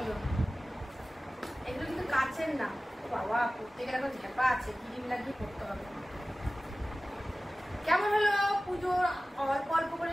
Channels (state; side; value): normal; both; correlation 0.97